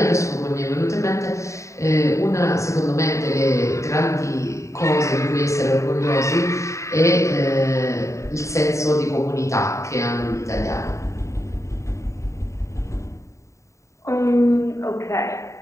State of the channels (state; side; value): late; right; 0.14 ms